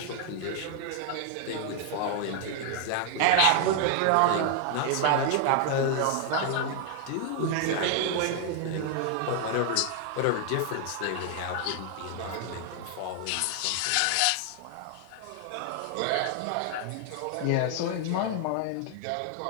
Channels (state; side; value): different; both; correlation 0.00